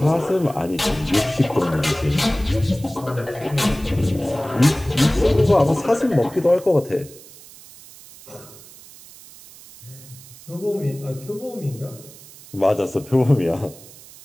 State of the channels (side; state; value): right; noise; hiss, 20 dB below the sound